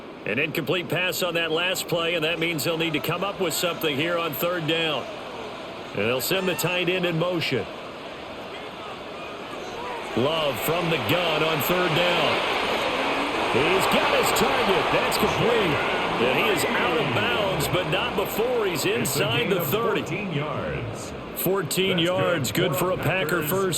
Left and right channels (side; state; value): both; identical; correlation 1.00